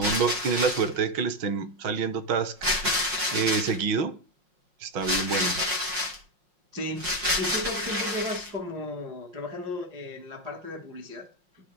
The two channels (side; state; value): left; late; 5.6 ms